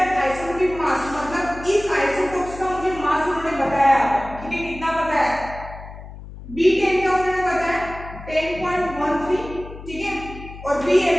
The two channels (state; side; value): noise; left; hum, 14 dB below the sound